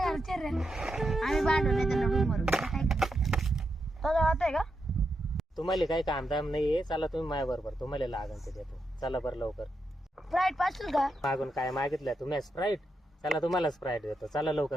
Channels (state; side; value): normal; both; correlation 0.84